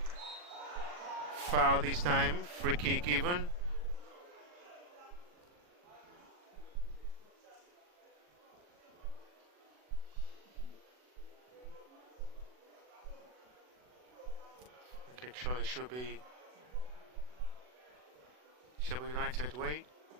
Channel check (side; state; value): left; late; 40 ms